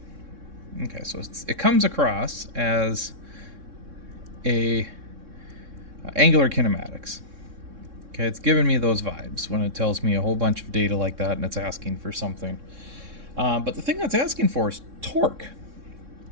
Okay, so it comes across as a angular kinematics. Okay, it's giving me those vibes when it tells me a whole bunch of data like that and it's asking for something. But the thing that's asking for is torque.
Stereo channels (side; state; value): left; late; 3.6 ms